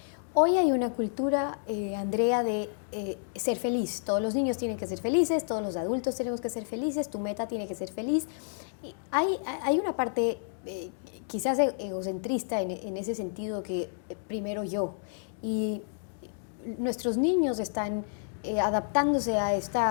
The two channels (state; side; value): silent; right; digital silence